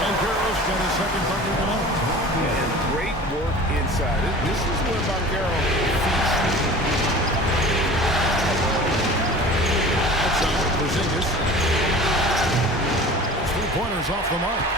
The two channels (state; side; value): normal; both; correlation 0.40